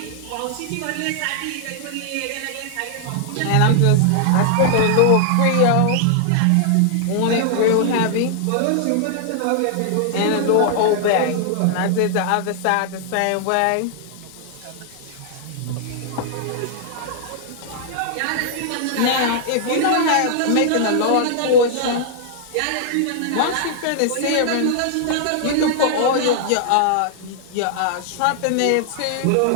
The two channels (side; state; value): both; different; correlation -0.01